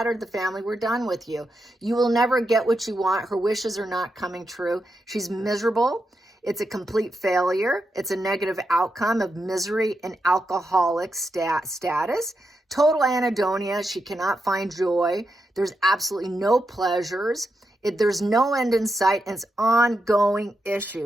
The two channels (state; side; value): normal; both; correlation 0.85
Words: the family. We're done with you. You will never get what you want. Her wishes are not coming true. She's miserable. It's a complete failure. It's a negative outcome of misery and alcoholic status. Total anhedonia. She cannot find joy. There's absolutely no pleasures. There's no end in sight, and it's ongoing